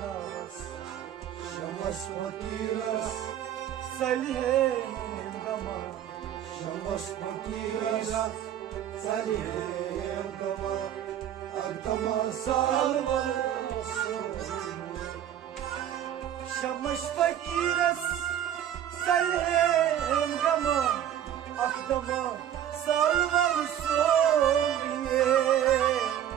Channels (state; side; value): quieter; left; 10.6 dB